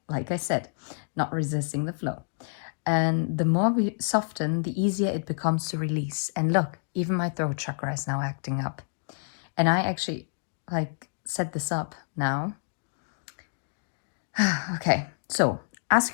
like I said, not resisting the flow. And the more we soften, the easier it becomes to release. And look, even my throat chakra is now acting up. And I actually set this up now. Okay, so ask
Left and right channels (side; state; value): right; silent; digital silence